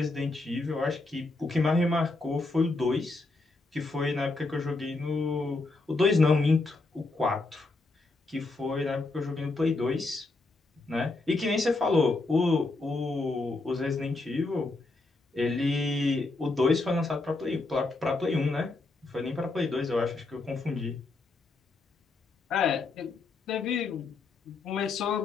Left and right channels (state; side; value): quieter; right; 3.4 dB